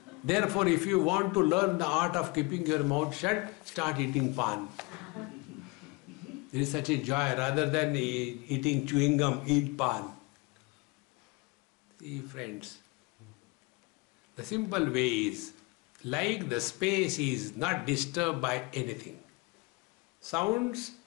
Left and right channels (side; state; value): right; quieter; 26.6 dB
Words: Therefore, if you want to learn the art of keeping your mouth shut, start eating pan. There is such a joy. Rather than eating chewing gum, eat pan. See, friends, the simple way is, like the space is not disturbed by anything. Sounds